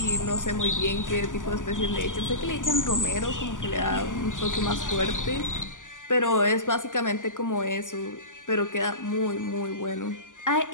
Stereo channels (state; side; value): late; right; 0.87 ms